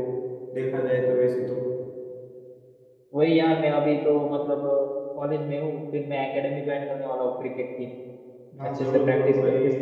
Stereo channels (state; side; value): identical; both; correlation 1.00